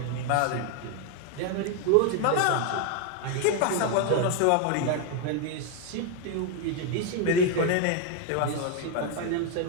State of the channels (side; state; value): both; different; correlation 0.01